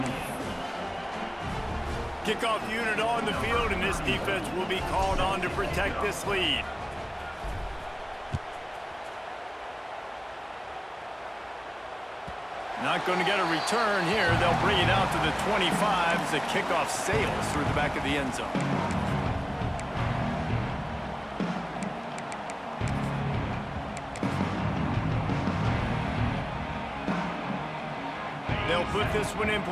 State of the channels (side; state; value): both; identical; correlation 1.00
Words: Kickoff unit on the field, and this defense will be called on to protect this lead. Not going to get a return here. They'll bring it out to the 25 as the kickoff sails through the back of the end zone. They'll put this one in